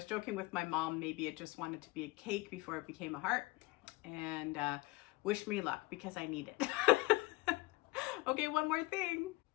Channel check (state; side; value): quieter; right; 21.8 dB